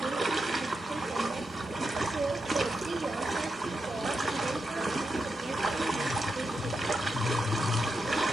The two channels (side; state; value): both; normal; correlation 0.86